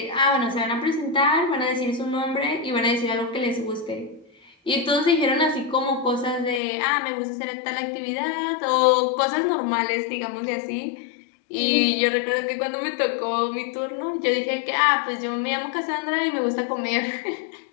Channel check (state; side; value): drops out; right; at 6.6 s